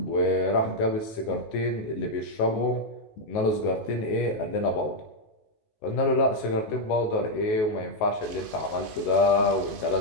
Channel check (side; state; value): right; late; 19 ms